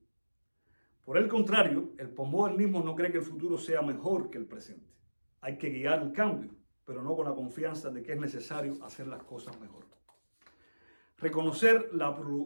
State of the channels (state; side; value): inverted; both; correlation -1.00